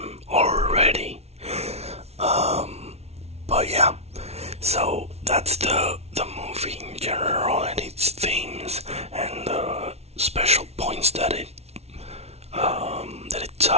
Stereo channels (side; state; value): left; late; 0.31 ms